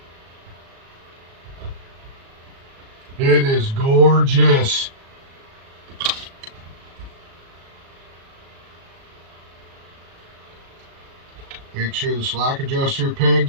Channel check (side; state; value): left; late; 37 ms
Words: It is gorgeous. Make sure the slack adjuster